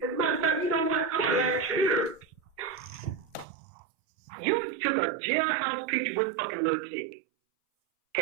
As a matter of fact, you know what? Why they care? You took a jailhouse picture with fucking little Tick.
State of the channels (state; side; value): drops out; left; at 3.5 s